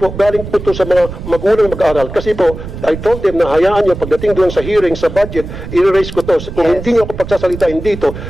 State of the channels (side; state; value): right; noise; rumble, 10 dB below the sound